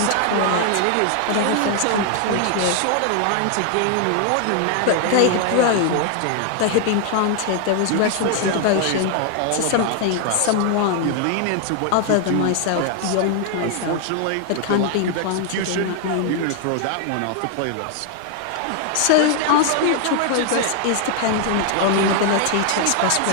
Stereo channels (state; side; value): different; both; correlation 0.00